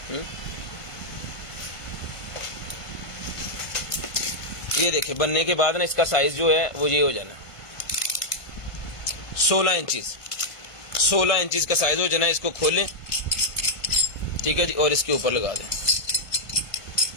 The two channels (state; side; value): late; right; 1.5 ms